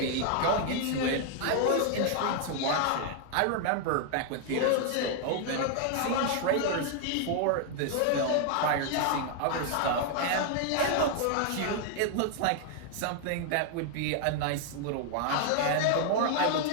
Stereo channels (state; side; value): different; both; correlation 0.00